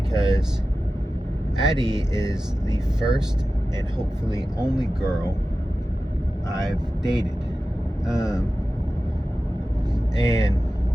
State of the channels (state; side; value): normal; both; correlation 0.94